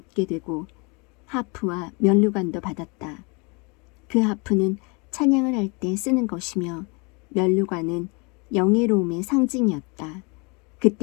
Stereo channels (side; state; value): right; quieter; 30.5 dB